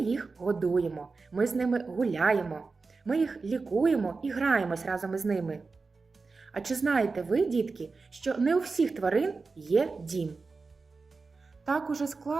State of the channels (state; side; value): quieter; left; 4.2 dB